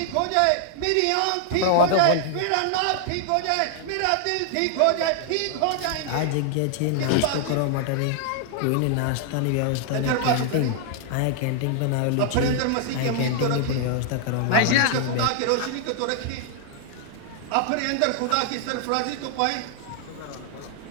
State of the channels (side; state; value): both; different; correlation -0.01